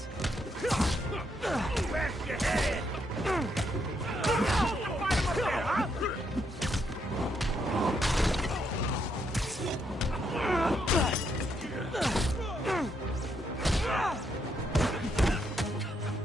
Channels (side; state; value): both; normal; correlation 0.77